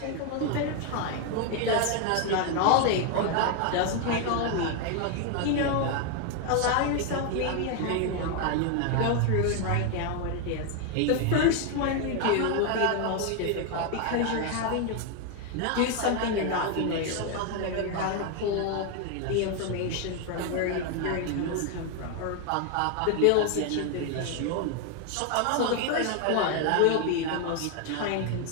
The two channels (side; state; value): both; different; correlation 0.01